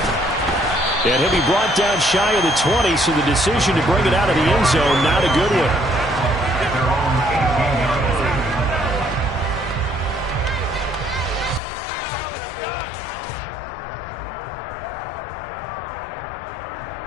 And he'll be brought down shy of the 20, so the decision to bring it out of the end zone, not a good one.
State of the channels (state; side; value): drops out; right; at 11.6 s